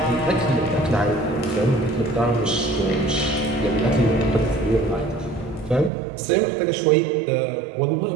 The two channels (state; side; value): drops out; left; at 5.9 s